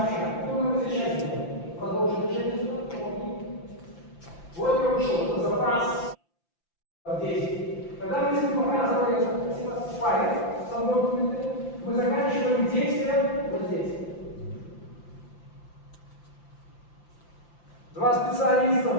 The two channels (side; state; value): right; late; 5.8 ms